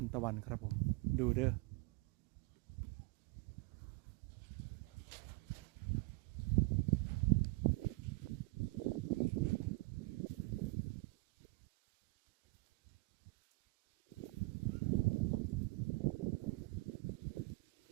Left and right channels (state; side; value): quieter; left; 25.4 dB